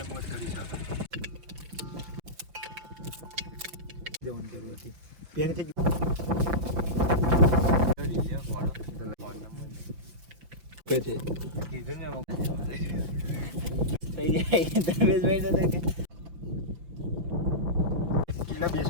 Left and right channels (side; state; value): left; late; 5.9 ms